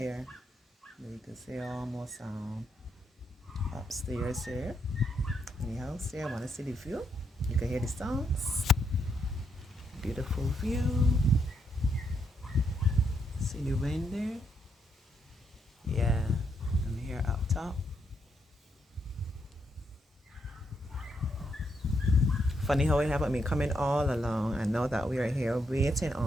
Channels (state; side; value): normal; both; correlation 0.78